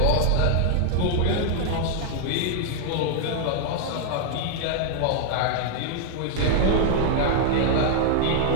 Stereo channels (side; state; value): both; different; correlation -0.01